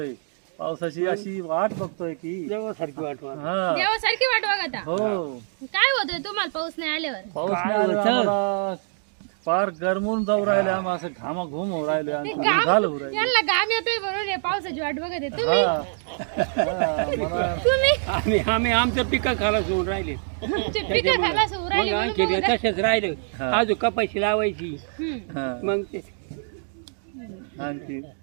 पावसाची अशी वाट बघतोय की देवासारखी वाट हा देवासारखी वाट बघता. हो काय होतंय तुम्हाला पाऊस नाही आल्यावर? पाऊस नाही आला आम्हाला फार गरमून जाऊ राहिले. आम्ही असं घामाघूम होऊ राहिले आणि घाल होऊ राहिले. यांना घाम येतोय म्हणून हे पावसाची वाट बघत आहे तुम्ही. मला तुम्ही आम्ही आमचं पिकं खालास होऊन राहिले. पिकं खायला सुरू राहिली मग म्हणून आणखी बघत आहे. तसेच राहिले. अजून कपाशी लावायची. हम्म. मग ते आणखी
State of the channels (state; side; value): silent; left; 62 dB below the other